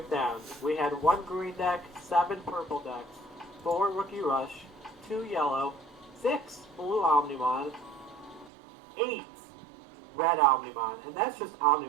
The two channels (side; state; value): left; drops out; at 8.5 s